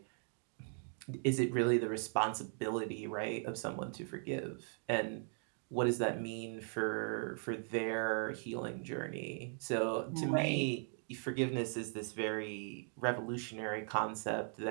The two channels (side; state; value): left; silent; 52 dB below the other